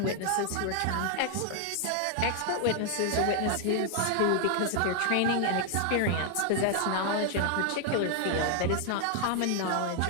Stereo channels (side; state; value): both; different; correlation 0.00